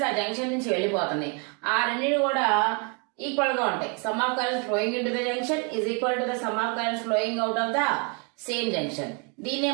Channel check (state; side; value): quieter; left; 35.0 dB